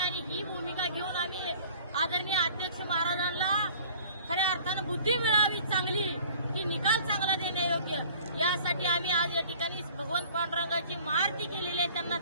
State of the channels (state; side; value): inverted; both; correlation -0.49